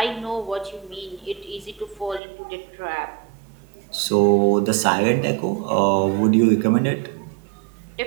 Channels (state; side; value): drops out; left; at 2.2 s